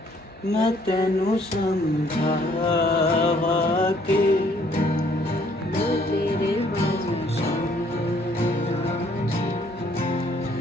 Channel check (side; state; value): both; normal; correlation 0.63